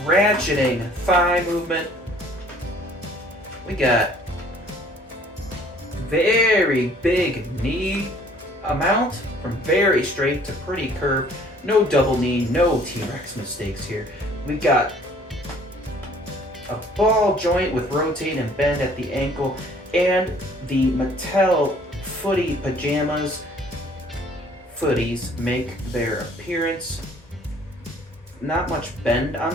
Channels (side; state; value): both; normal; correlation 0.56